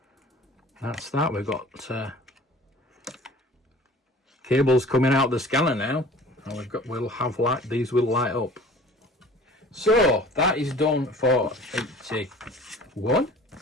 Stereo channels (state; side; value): normal; both; correlation 0.46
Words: We've got cables coming out the scanner now, and we'll have light. These will light up. So that is done for 81.